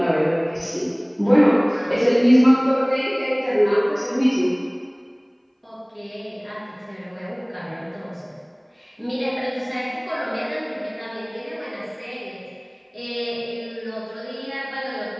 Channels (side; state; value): both; identical; correlation 1.00